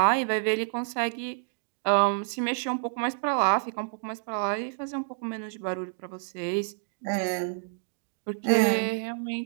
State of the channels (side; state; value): left; silent; digital silence